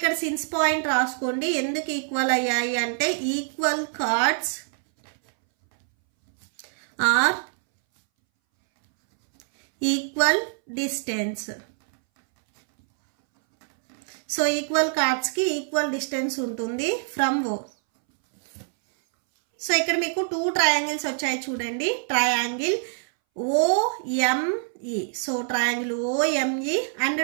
సిన్స్ పాయింట్ రాసుకోండి. ఎందుకు ఈక్వల్ అయ్యాయి అంటే equal chords are equal distance. So equal కార్డ్స్కి ఈక్వల్ డిస్టెన్స్ ఉంటుంది ఫ్రమ్ ఓ. సో ఇక్కడ మీకు 2 ట్రయాంగిల్స్ వచ్చాయి చూడండి. Triangle OME. So triangle OME and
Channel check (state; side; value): silent; left; 62 dB below the other